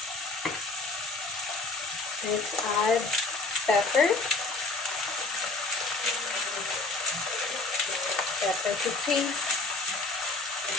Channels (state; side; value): quieter; right; 3.5 dB